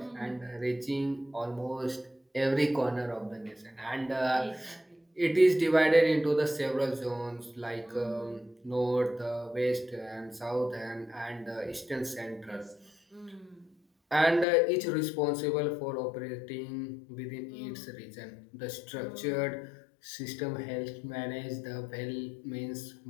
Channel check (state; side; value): drops out; right; at 14.5 s